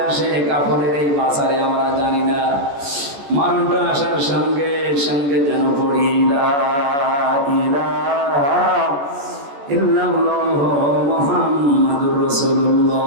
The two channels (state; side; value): late; left; 14 ms